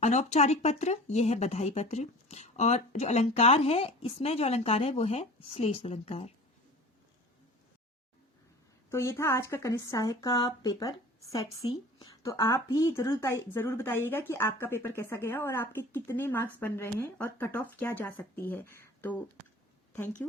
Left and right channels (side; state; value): both; normal; correlation 0.41